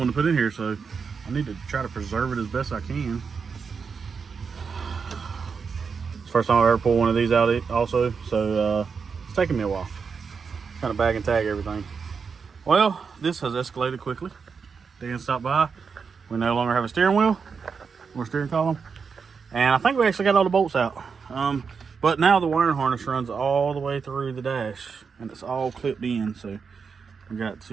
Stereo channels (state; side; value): quieter; left; 5.7 dB